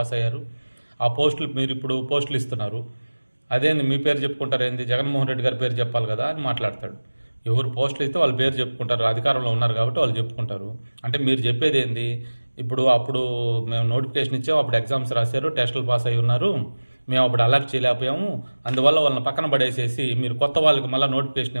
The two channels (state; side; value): inverted; both; correlation -1.00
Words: అయ్యారు, ఆ పోస్టులు మీరు ఇప్పుడు పోస్టులు ఇస్తున్నారు, అదేంది మీ పేరు చెప్పుకుంటారు ఏంది? జగన్మోహన్ రెడ్డి గారి పేరు చెప్పాలి కదా అని మాట్లాడతాడు. ఎవరు పోస్టులు ఇస్తే వాళ్ళ పేరు చెప్పుకుంటారు, అధికారంలో ఉన్నారు కాబట్టి వాళ్ళు చెప్పుకుంటారు. అంటే మీరు చెప్పేది ఏంది? అప్పుడు మేము నోటిఫికేషన్ ఇచ్చాము, అప్పుడు ఎగ్జామ్స్ రాశారు, టెస్టులు పాస్ అయి ఉన్నారు, మేము అప్పుడు అలర్ట్ చేయలేకపోయాము, అందువల్ల వాళ్ళని పక్కన పడేసేసి మీరు కొత్త వాళ్ళకి మళ్ళీ నోటిఫికేషన్